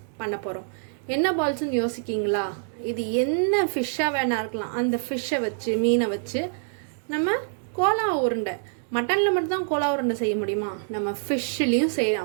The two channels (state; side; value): silent; left; digital silence